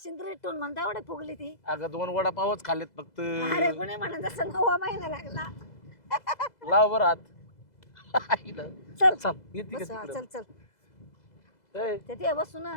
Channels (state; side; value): late; right; 2.0 ms